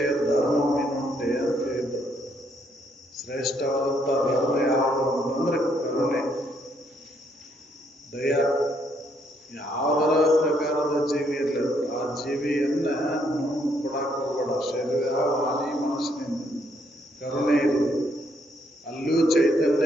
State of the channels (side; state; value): both; normal; correlation 0.71